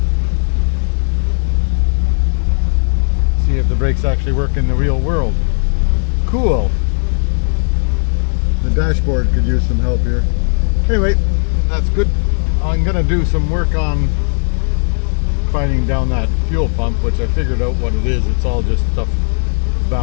See if the brakes actually work in the real world. Cool. The dashboard could use some help here. Anyway, that's good. I'm gonna do some work on finding down that fuel pump, which I figured out what it is. It's all just stuff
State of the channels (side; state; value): right; silent; 59 dB below the other